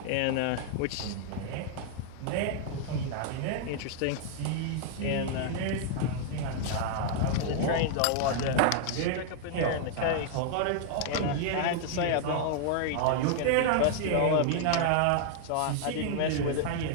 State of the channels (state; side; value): different; both; correlation 0.00